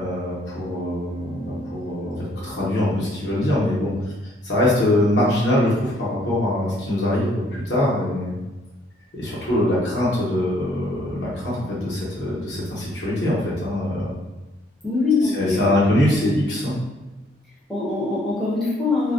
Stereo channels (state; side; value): normal; both; correlation 0.65